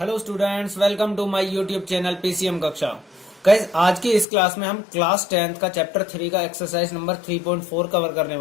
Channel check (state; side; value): drops out; right; at 4.2 s